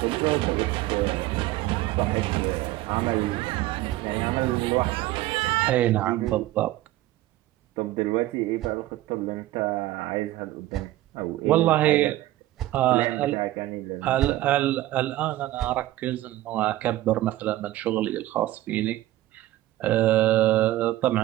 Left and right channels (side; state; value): left; quieter; 15.9 dB